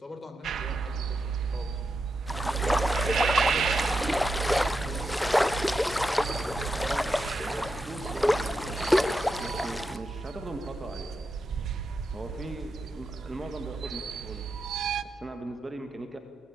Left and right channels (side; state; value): both; normal; correlation 0.87